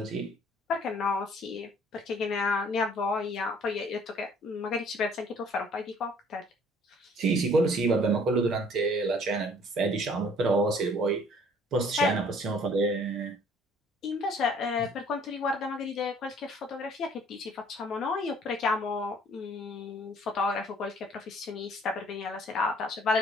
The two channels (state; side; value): normal; both; correlation 0.57